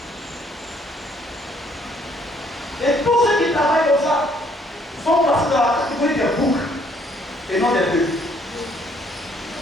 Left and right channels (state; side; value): normal; both; correlation 0.65